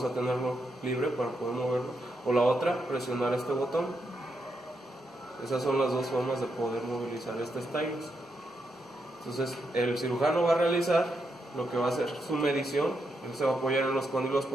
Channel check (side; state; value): both; normal; correlation 0.82